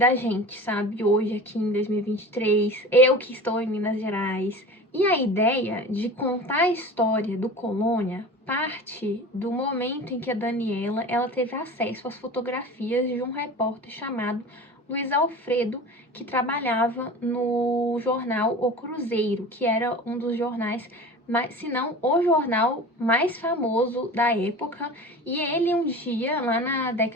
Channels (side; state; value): both; normal; correlation 0.36